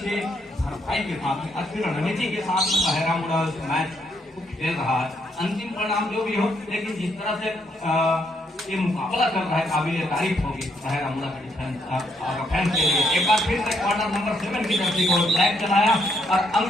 भरपाई के साथ, अच्छी रणनीति के साथ बहरामुला मैच खेल रहा है। अंतिम परिणाम जो भी हो, लेकिन जिस तरह से ये मुकाबला कर रहा है काबिल तारीफ होगी बहरामुला का डिफेंस के लिए। एक बार फिर से क्वार्टर नंबर 7 की जर्सी को लैग चलाया और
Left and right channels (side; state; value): both; normal; correlation 0.74